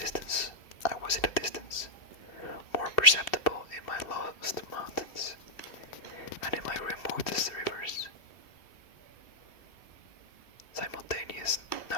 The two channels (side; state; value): right; late; 2.7 ms